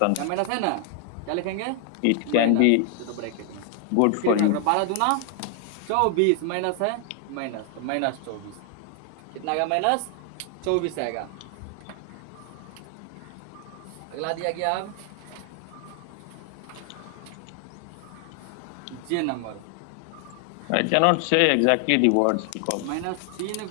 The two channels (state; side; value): different; both; correlation 0.00